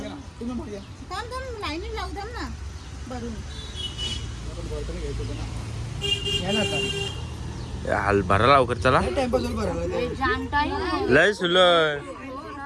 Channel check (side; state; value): both; identical; correlation 1.00